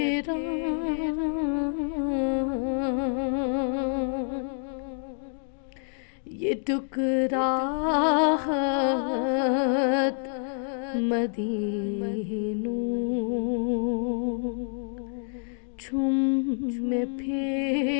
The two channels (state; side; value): silent; right; digital silence